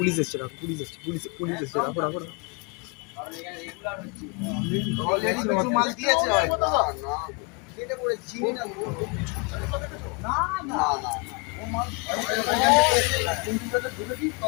এসছে, রাখো, police এসছে, পুলিশ এসছে, রাখো রাখো। মাল দিয়েছে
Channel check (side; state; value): right; quieter; 31.2 dB